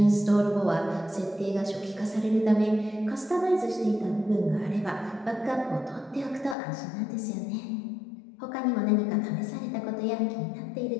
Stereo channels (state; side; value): drops out; right; at 6.6 s